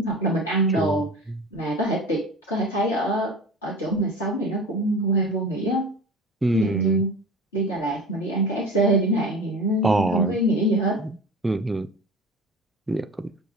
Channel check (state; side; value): normal; both; correlation 0.35